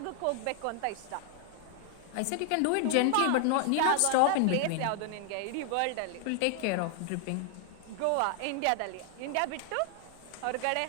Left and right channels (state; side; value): different; both; correlation 0.00